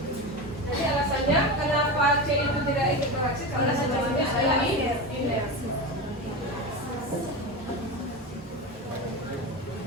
Jadi alasannya kenapa C itu tidak ikut bereaksi karena senyawanya adalah iner.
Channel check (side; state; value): both; normal; correlation 0.22